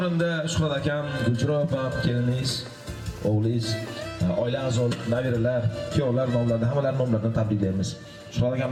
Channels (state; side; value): identical; both; correlation 1.00